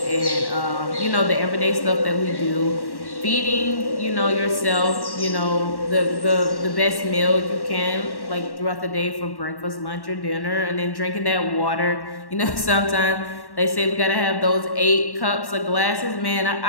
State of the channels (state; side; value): late; right; 1.1 ms